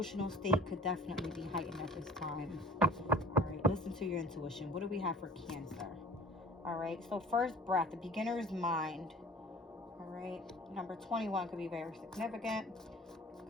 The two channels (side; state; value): both; normal; correlation 0.46